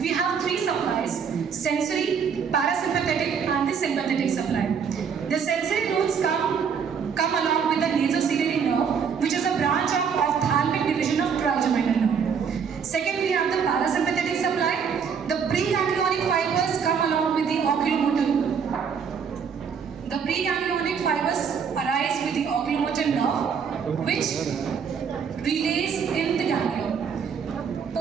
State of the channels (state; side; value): quieter; left; 6.7 dB